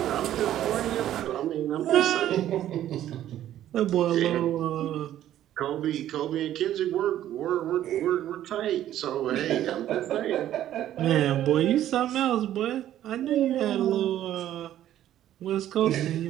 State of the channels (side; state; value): left; quieter; 12.2 dB